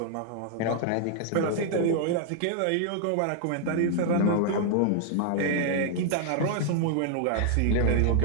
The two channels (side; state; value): both; different; correlation 0.00